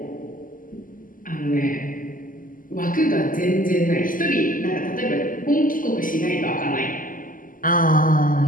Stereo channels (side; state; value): right; late; 0.40 ms